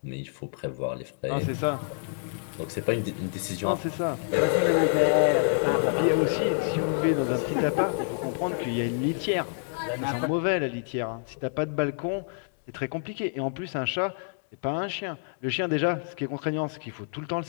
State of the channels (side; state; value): right; silent; digital silence